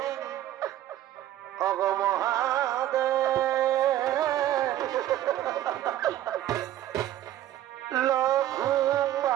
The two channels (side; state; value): left; quieter; 13.0 dB